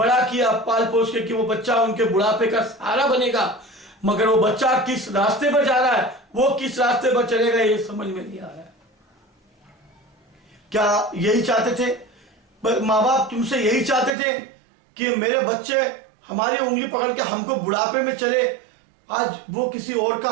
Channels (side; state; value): left; drops out; at 14.2 s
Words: किया पाल पोस के, कि वो बच्चा उनके बुढ़ापे का सहारा बनेगा, मगर वो बच्चा किस रास्ते पर जा रहा है, वो किस रास्ते पर चलेगा, ये समझ में नहीं आ रहा है। क्या यही चाहते थे माँ बाप? तुमसे यही चाहते थे कि मेरे बच्चे हमारी उंगली पकड़ के हमको बुढ़ापे में चले? आज वो किसी और का